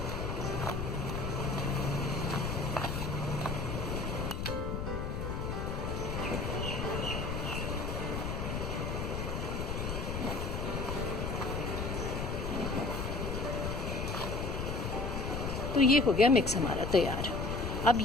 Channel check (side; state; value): left; noise; rumble, 3 dB below the sound